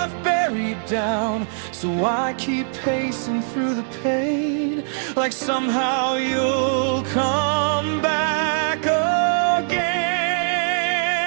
buried down. So I keep pacing through the pain, like somehow you'll come back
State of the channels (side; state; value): left; silent; digital silence